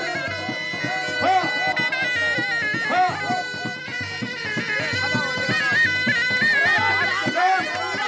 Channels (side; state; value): both; identical; correlation 1.00